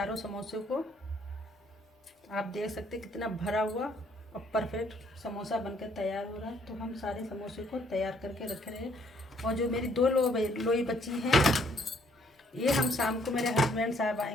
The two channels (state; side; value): normal; both; correlation 0.66